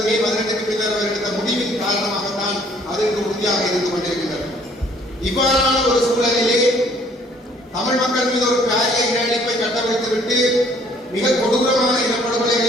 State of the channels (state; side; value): normal; both; correlation 0.59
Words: மே 18க்கு பின்னர் அவர் எடுத்த முடிவின் காரணமாகத்தான் அது இன்று உறுதியாக இருந்து கொண்டிருக்கின்றது. இவ்வாறான ஒரு சூழலிலே தமிழ் மக்கள் மீது ஒரு பாரிய இனஅழிப்பை கட்டமைத்துவிட்டு மிக கொடூரமான